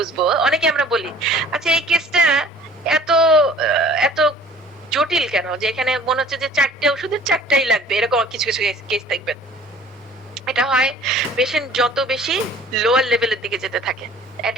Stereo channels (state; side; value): normal; both; correlation 0.50